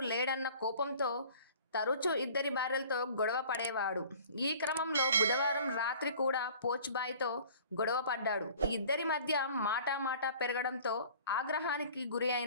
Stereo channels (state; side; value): inverted; both; correlation -0.48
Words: లేడన్న కోపంతో తరచూ 2 భార్యలతో గొడవ పడేవాడు. ఈ క్రమంలో బుధవారం రాత్రి కూడా పోచ్బాయ్తో గొడవ పడ్డాడు. ఇద్దరి మధ్య మాటా పెరగడంతో ఆగ్రహానికి గురి